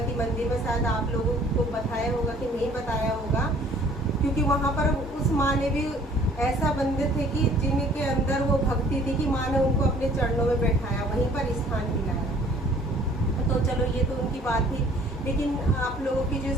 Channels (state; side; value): normal; both; correlation 0.55